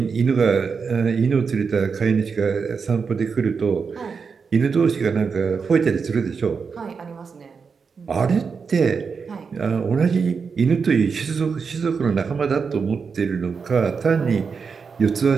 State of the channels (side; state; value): left; quieter; 5.5 dB